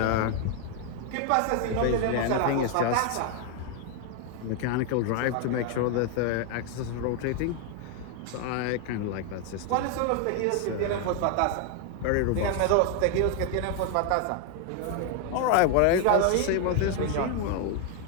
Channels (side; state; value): both; different; correlation 0.00